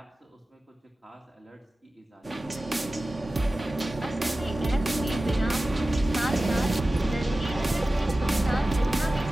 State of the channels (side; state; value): both; normal; correlation 0.96